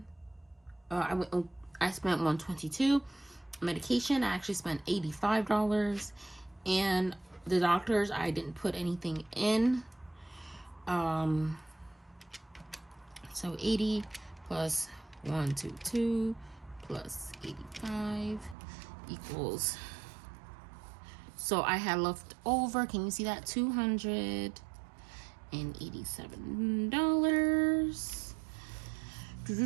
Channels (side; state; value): left; drops out; at 18.6 s